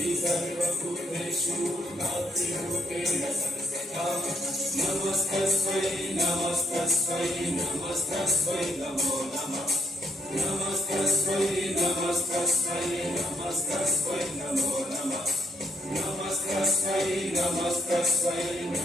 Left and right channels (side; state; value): both; normal; correlation 0.73